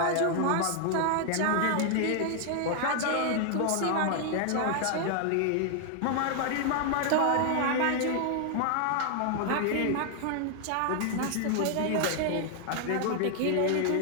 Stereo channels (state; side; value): different; both; correlation 0.00